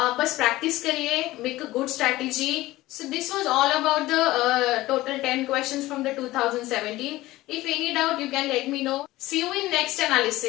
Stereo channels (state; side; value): quieter; right; 17.6 dB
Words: बस प्रैक्टिस करिए, make a good strategy. So this was all about the total 10 questions from the 2017. If any doubt you can let me know. See you in next